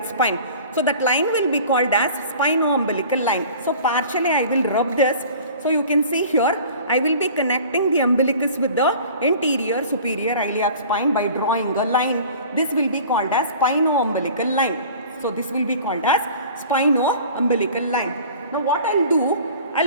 spine, so that line will be called as spino-umbilical line. So partially I will rub this. So you can see here, I will be connecting the umbilicus with the anterior superior iliac spine by drawing a line. This will be called as spino-umbilical line. So this will be called as spino-umbilical line. Now what I'll do,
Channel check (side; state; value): both; inverted; correlation -0.44